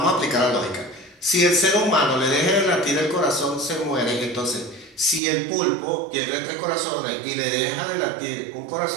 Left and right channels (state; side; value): drops out; left; at 5.2 s